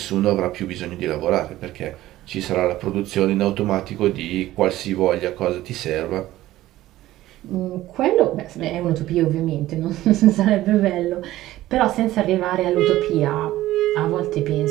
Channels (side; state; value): left; quieter; 15.4 dB